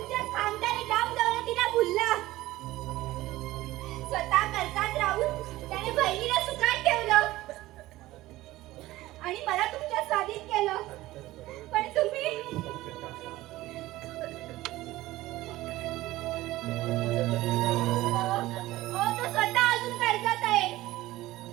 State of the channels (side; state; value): left; quieter; 17.2 dB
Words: खानदानी काम दौलतीला भुलला. स्वतः कर्जात राहून त्याने बहिणीला सुखात ठेवलं आणि मला तुमच्या स्वाधीन केलं. पण तुम्ही तो स्वतः अजून कर्जात आहे.